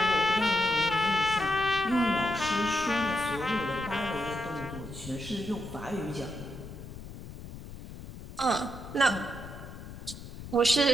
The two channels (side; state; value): left; noise; rumble, 13 dB below the sound